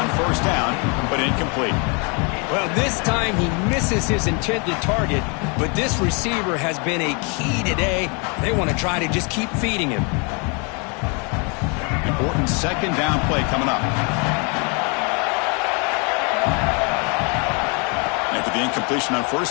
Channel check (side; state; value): right; quieter; 33.9 dB